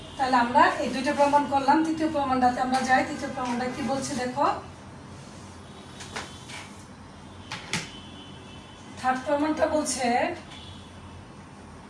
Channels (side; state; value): both; identical; correlation 1.00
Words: তাহলে আমরা এই দুইটা প্রমাণ করলাম, তৃতীয় প্রমাণটাতে আমরা যাই। তৃতীয় প্রমাণটা কি বলছে দেখো, থার্ড প্রমাণটা বলছে